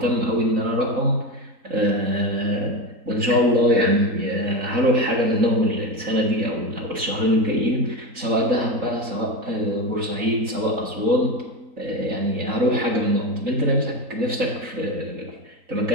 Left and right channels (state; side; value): late; left; 3.8 ms